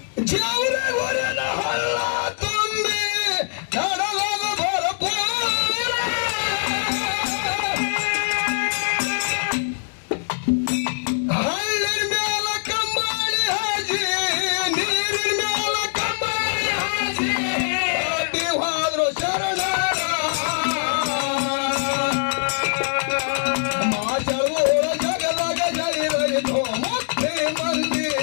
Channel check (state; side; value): silent; right; 64 dB below the other